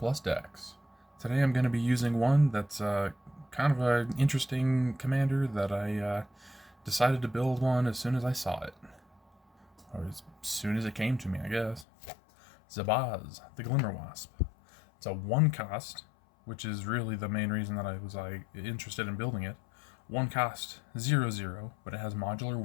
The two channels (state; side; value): drops out; right; at 11.9 s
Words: decks. Today I'm going to be using one that's kind of an interesting commander that I decided to build one as soon as I saw it. Or as soon as it came to me, I guess. Zabaz, the Glimmerwasp. It's a 1 cost, which is really the main reason that I was interested in building it. 1 cost 0/0, but it has modular